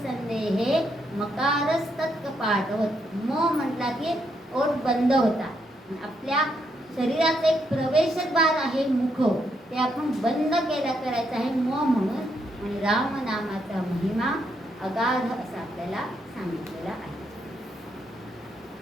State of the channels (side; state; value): both; normal; correlation 0.77